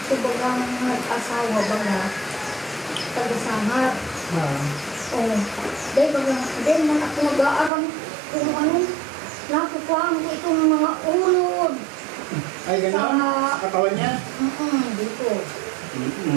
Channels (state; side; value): drops out; left; at 7.7 s